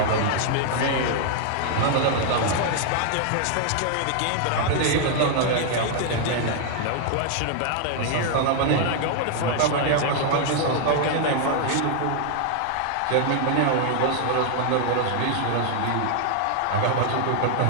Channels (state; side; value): different; both; correlation 0.00